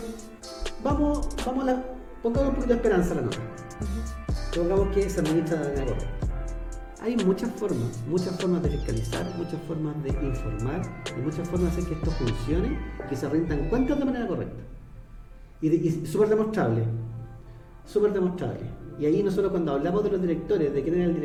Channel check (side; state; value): both; identical; correlation 1.00